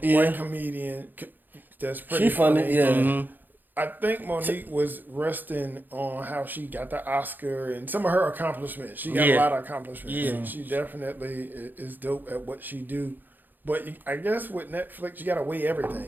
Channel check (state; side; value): late; left; 0.088 ms